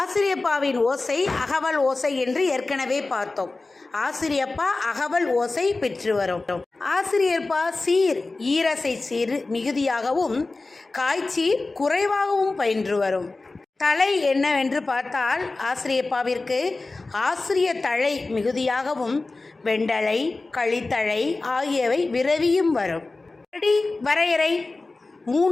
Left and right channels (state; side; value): quieter; right; 3.4 dB